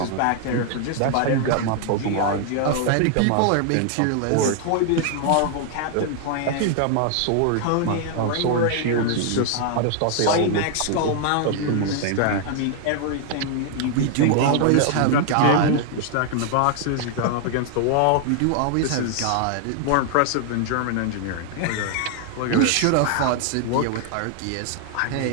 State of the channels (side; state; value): both; different; correlation 0.00